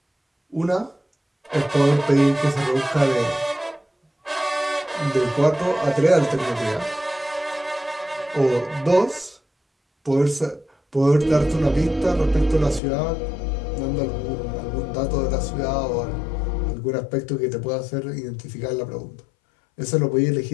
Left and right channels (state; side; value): drops out; right; at 12.8 s